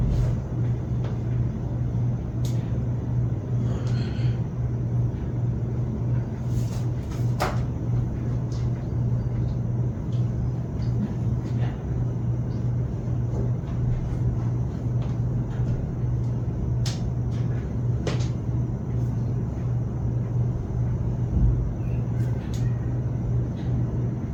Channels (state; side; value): identical; both; correlation 1.00